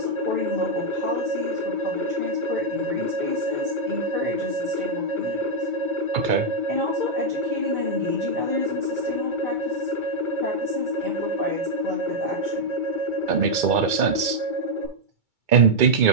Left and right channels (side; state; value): left; late; 2.2 ms